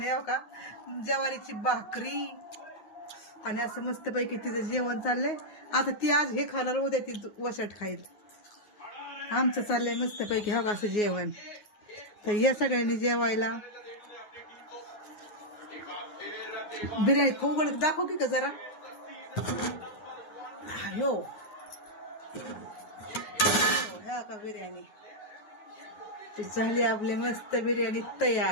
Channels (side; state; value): right; late; 9.5 ms